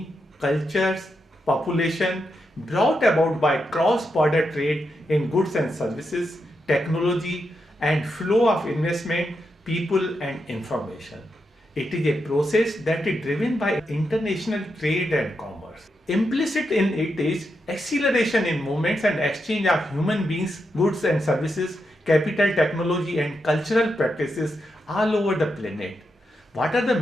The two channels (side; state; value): both; normal; correlation 0.84